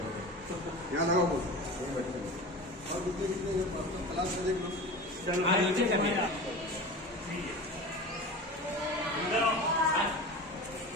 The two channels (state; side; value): normal; both; correlation 0.32